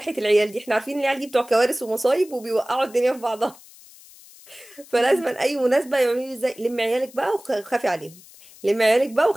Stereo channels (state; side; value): noise; left; hiss, 22 dB below the sound